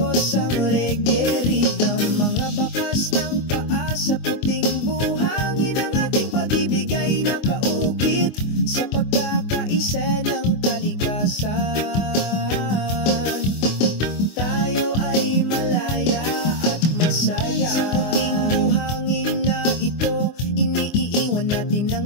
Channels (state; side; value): late; right; 24 ms